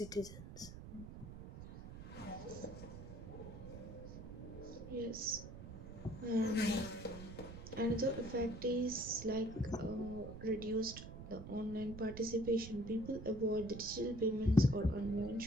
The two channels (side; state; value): right; noise; rumble, 11 dB below the sound